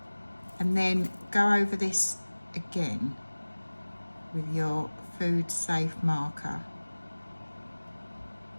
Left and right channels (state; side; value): inverted; both; correlation -1.00